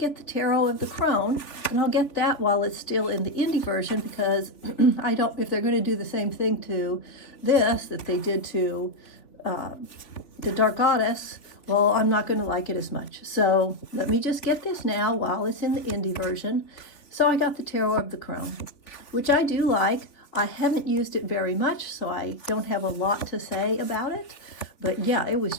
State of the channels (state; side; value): late; right; 3.5 ms